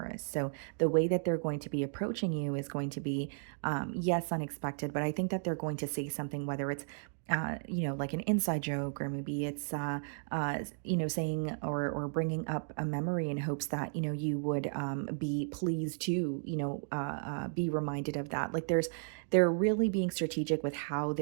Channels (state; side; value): silent; left; digital silence